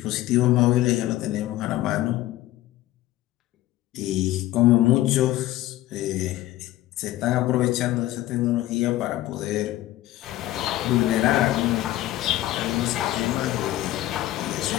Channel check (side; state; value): right; quieter; 15.6 dB